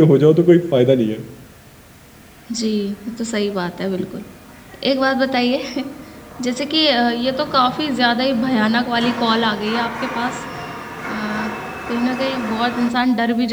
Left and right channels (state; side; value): identical; both; correlation 1.00